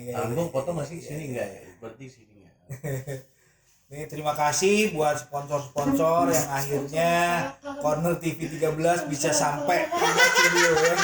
Tanggung foto masih sini enggak ya? Berarti sini ya. Nih, terima kasih buat sponsor-sponsor yang akhirnya Corner TV 13 bisa sampai ke studio ya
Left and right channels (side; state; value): both; identical; correlation 1.00